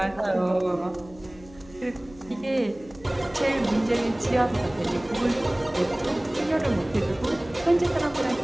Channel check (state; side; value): noise; left; hum, 22 dB below the sound